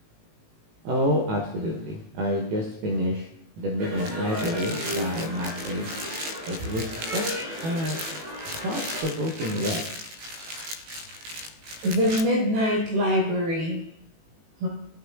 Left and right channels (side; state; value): left; late; 18 ms